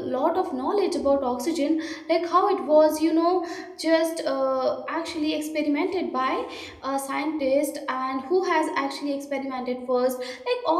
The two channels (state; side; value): identical; both; correlation 1.00